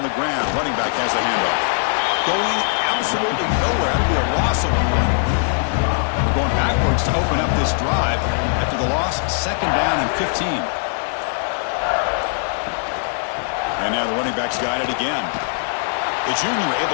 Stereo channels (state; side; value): silent; right; digital silence